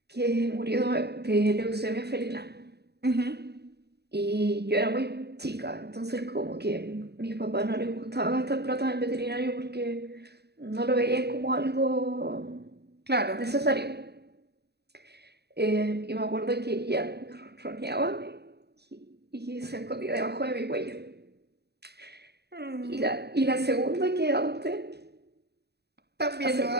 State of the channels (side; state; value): left; late; 0.48 ms